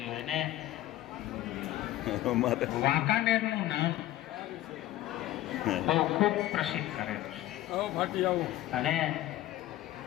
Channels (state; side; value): quieter; right; 14.7 dB